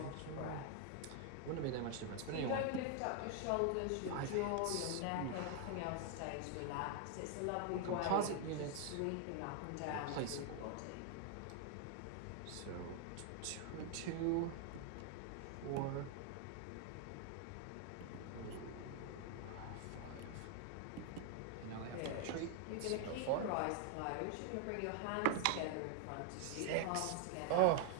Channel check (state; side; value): different; both; correlation 0.00